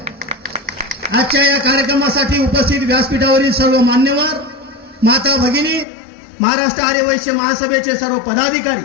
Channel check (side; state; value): right; drops out; at 5.9 s